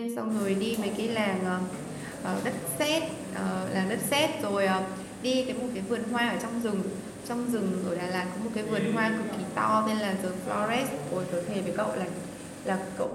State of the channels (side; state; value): both; identical; correlation 1.00